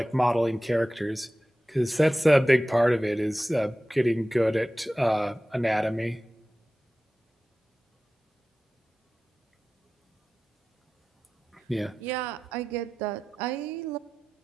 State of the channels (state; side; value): normal; both; correlation 0.95